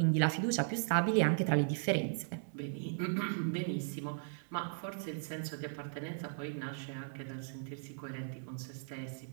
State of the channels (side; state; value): left; silent; digital silence